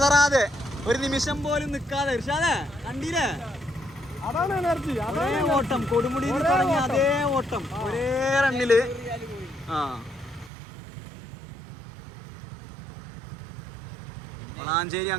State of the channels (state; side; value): drops out; left; at 10.5 s